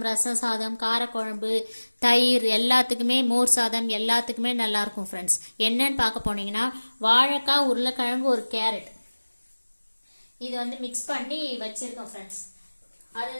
ரசம் சாதம், காரக்குழம்பு, தயிர் எல்லாத்துக்குமே, மோர் சாதம் எல்லாத்துக்குமே நல்லாயிருக்கும் ஃப்ரெண்ட்ஸ். என்னன்னு பார்க்க போனீங்கன்னா வாழைக்காய், உருளைக்கிழங்கு, ஒரு கேரட் இது வந்து மிக்ஸ் பண்ணி வச்சுருக்கோம் ஃப்ரெண்ட்ஸ்.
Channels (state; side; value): inverted; both; correlation -1.00